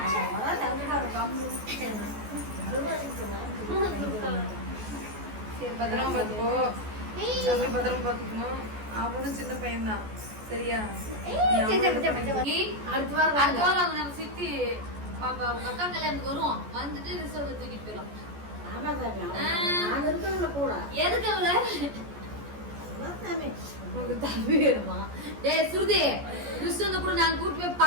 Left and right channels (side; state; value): left; late; 14 ms